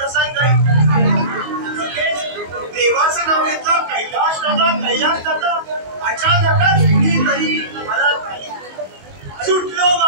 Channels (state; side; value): late; left; 22 ms